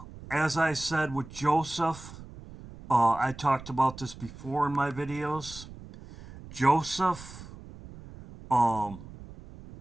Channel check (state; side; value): noise; right; rumble, 16 dB below the sound